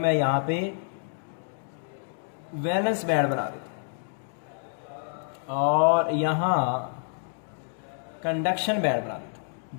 यहाँ पे वैलेंस बैंड बना देता हूँ और यहाँ कंडक्शन बैंड बना देता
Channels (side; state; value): right; silent; digital silence